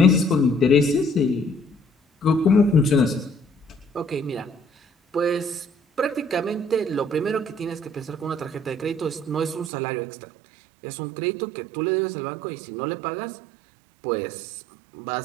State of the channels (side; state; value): left; drops out; at 9.7 s